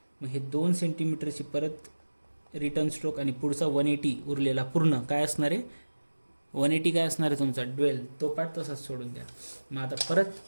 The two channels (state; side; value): inverted; both; correlation -1.00